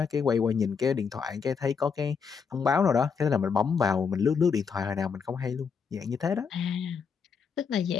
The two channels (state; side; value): quieter; right; 6.1 dB